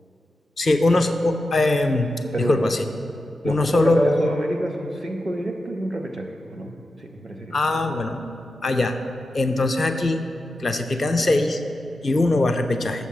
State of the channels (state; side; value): normal; both; correlation 0.90